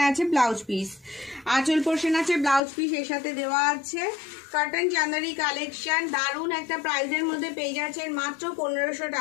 আছে ব্লাউজ পিস। আঁচল পোর্শন আছে, ব্লাউজ পিস এর সাথে দেওয়া আছে। কটন চান্দেরি কালেকশন দারুণ একটা প্রাইসের মধ্যে পেয়ে যাচ্ছেন মাত্র 1500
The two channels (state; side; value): drops out; right; at 2.6 s